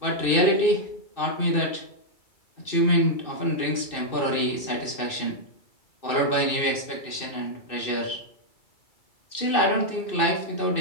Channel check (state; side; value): late; right; 2.6 ms